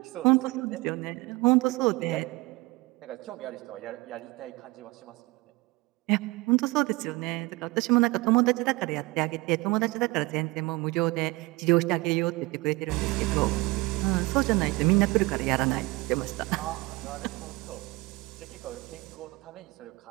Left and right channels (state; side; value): quieter; left; 23.0 dB